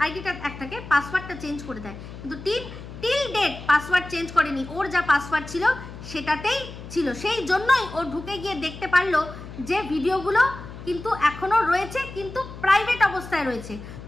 আইডিটা একটাকে পাসওয়ার্ডটা চেঞ্জ করে দেয়। কিন্তু টিল ডেট পাসওয়ার্ড চেঞ্জ করেনি, ওর যা পাসওয়ার্ড ছিল সেটাতেই ছিল, সেই জন্যই ও ঢুকে গিয়ে দেখতে পারলো যে ভিডিওগুলো কিন্তু এখনো রয়েছে, কিন্তু প্রাইভেট অবস্থায় রয়েছে।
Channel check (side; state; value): left; noise; hum, 13 dB below the sound